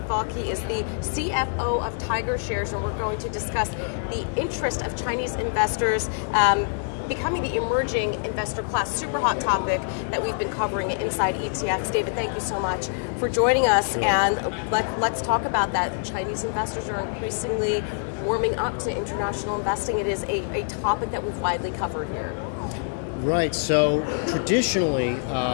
Falk. He is the CFO of Tiger Shares, and we're going to discuss the interest of Chinese investors becoming the emerging investor class. Super hot topic that we've been covering at Inside ETFs. David, thank you so much for joining us, and let's talk about that. Chinese investors are increasingly warming up to international investing. It is a topic that we've widely covered here. Right, so traditionally,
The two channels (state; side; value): silent; right; digital silence